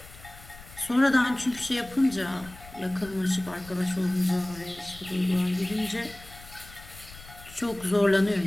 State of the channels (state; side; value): noise; left; rumble, 19 dB below the sound